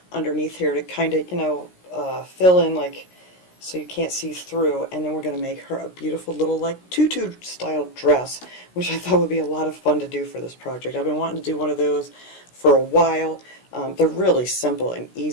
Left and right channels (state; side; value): late; right; 17 ms